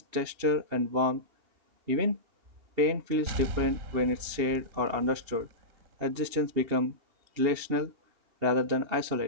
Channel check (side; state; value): left; late; 2.8 ms